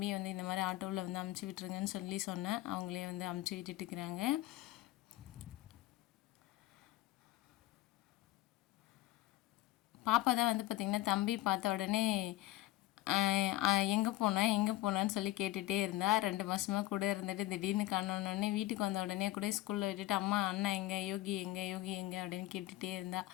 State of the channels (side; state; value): right; quieter; 16.5 dB